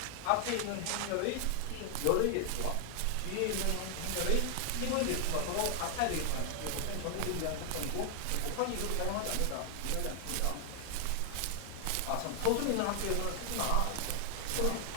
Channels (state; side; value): different; both; correlation 0.00